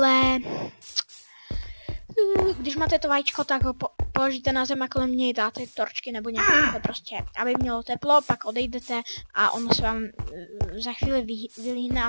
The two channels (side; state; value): both; inverted; correlation -1.00